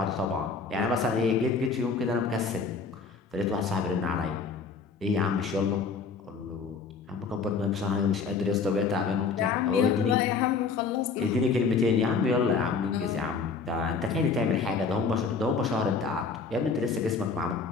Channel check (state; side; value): quieter; right; 4.9 dB